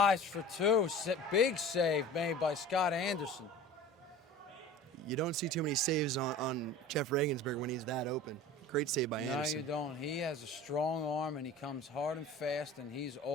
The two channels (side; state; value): both; normal; correlation 0.39